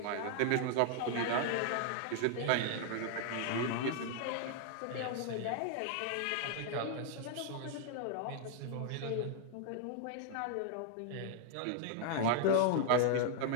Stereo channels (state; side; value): different; both; correlation 0.00